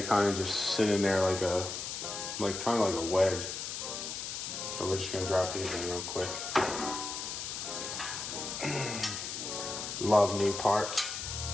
kind of just sit in there like a wedge. So we're just gonna drop these in real quick. Love new parts.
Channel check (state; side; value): noise; left; hiss, 5 dB below the sound